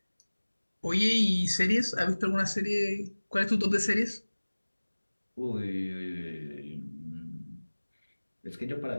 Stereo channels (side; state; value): both; inverted; correlation -1.00